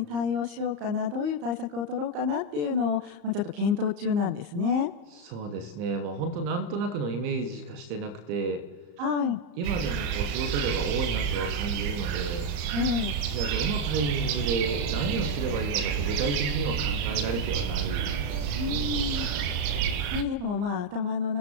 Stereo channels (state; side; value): late; left; 35 ms